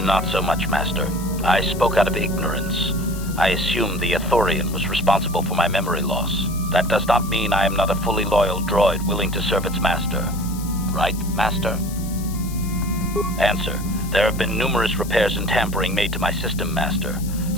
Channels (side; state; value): left; noise; hiss, 15 dB below the sound